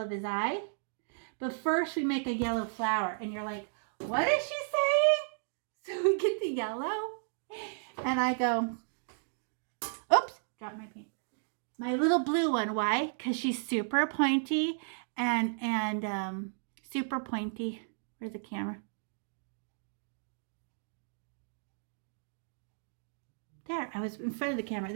his eye. But first we make a yellow flower, and you're like, what is she saying? So we get the yellow, and I go, oops, dropped my paint. My little blue one, why? Because she's super pointy and super pointy. Where's the camera? There, I was in front of the camera,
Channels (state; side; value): silent; left; digital silence